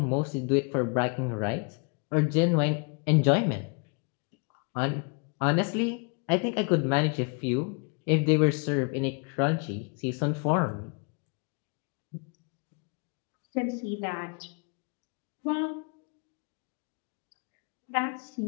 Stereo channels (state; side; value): quieter; right; 36.1 dB